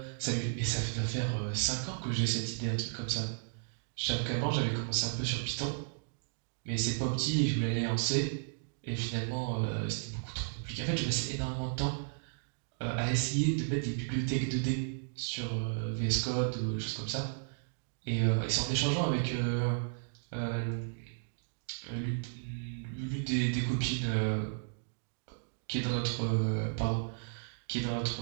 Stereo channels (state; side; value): silent; left; digital silence